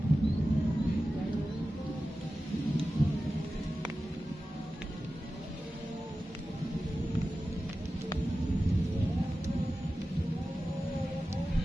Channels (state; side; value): normal; both; correlation 0.94